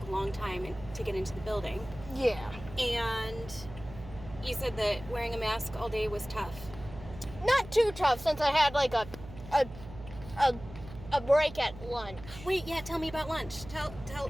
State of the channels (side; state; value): right; noise; hum, 15 dB below the sound